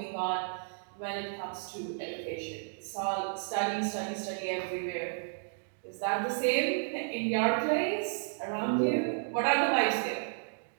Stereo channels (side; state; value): left; silent; digital silence